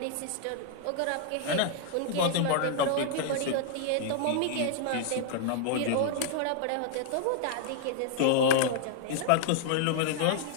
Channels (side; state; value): both; different; correlation -0.01